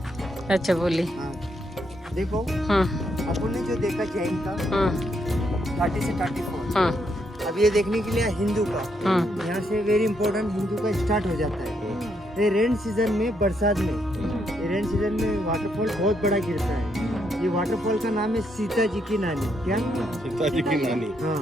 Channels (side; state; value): both; normal; correlation 0.76